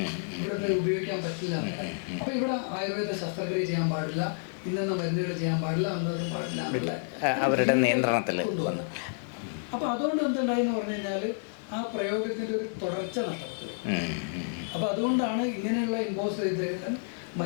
ഇവിടുത്തെ ഉപയോഗിക്കാൻ പറ്റില്ല എന്നുള്ളത്. അപ്പോൾ ഇവിടെ ആയുർവേദ ശസ്ത്രക്രിയ ചെയ്യാൻ പാടില്ല, ഇന്നെന്ന മരുന്നുകൾ ചെയ്യാൻ പാടില്ല, അന്നത് പാടില്ല എന്നുള്ള ഒരു ലീഗൽ കൊണ്ടുവന്നു. അപ്പോൾ അതുകൊണ്ട് എന്തുണ്ടായി എന്ന് പറഞ്ഞു കഴിഞ്ഞാൽ ആ പ്രയോഗത്തിൻ്റെ ഒരു തുടർച്ച നഷ്ടപ്പെട്ടു പോയി. അപ്പോൾ അതുകൊണ്ടാണ് ഇങ്ങനെയുള്ള ഇമ്പോസ് ചെയ്തെല്ലാം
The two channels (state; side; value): silent; right; digital silence